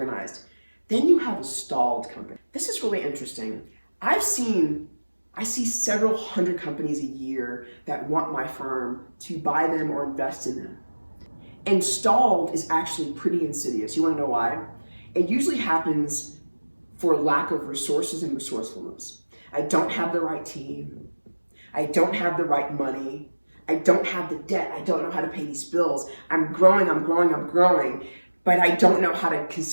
Then you have a stalled company. This is really interesting. I see several hundred companies a year that want my firm to buy them or invest in them. And stalled is actually pretty insidious. You want to know why? It usually happens for lack of resources and resourcefulness. I don't have the right team. I don't have the right money. I don't have the debt. I don't know how to pay these bills. I'm growing, but I don't know how to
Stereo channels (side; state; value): both; inverted; correlation -1.00